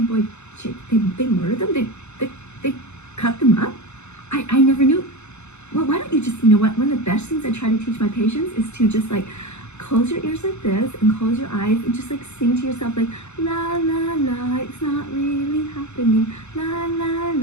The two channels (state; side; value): late; right; 0.82 ms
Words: chick, they murder them? They cut them up? I never knew. Well, why don't you just, one of the best things I try to teach my patients is to just close your ears like this and close your eyes and just sing to yourself la la la, it's not really happening, la la